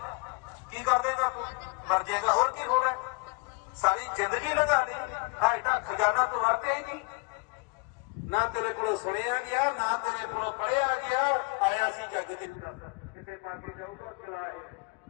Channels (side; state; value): right; quieter; 29.6 dB